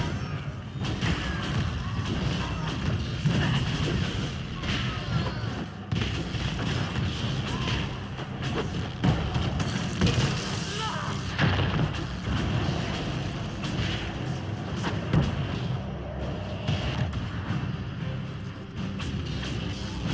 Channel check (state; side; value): identical; both; correlation 1.00